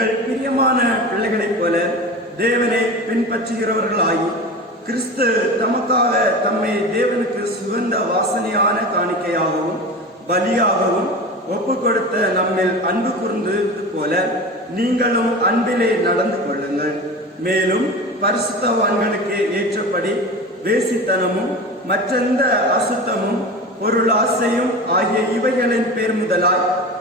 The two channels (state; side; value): normal; both; correlation 0.31